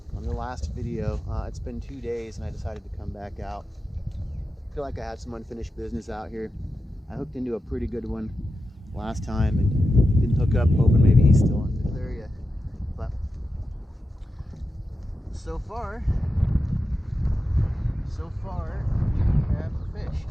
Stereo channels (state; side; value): normal; both; correlation 0.91